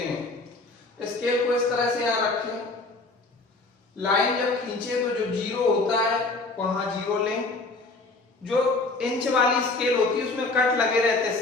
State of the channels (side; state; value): right; quieter; 3.4 dB